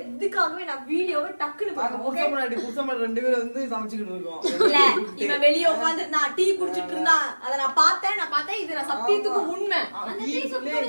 இதுக்காகவே நான் வீடியோவை டக்குன்னு பாக்க புருஷன் ரெண்டு பேரும் வந்து சமைச்சிட்டு இருக்கோம் இல்ல இவன் வெளிய உட்கார்ந்து நான் டீ குடிச்சிட்டு இருந்தான் அத நான் பார்த்தேன் இது நான் சத்தியத்துக்கு உண்மை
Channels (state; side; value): inverted; both; correlation -1.00